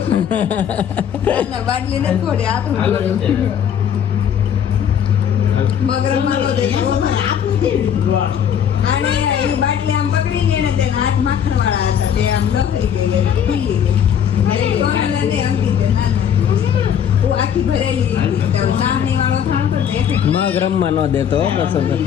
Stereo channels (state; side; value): quieter; right; 8.7 dB